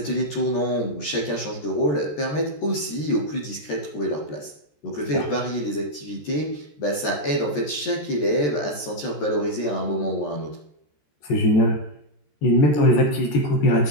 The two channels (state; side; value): late; right; 14 ms